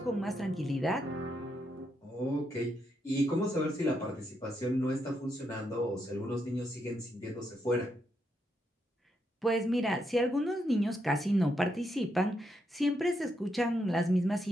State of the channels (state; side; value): normal; both; correlation 0.80